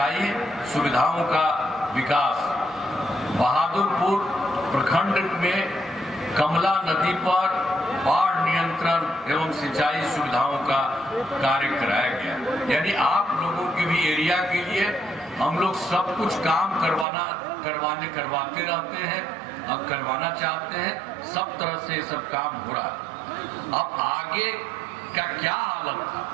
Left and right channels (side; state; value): left; drops out; at 17.1 s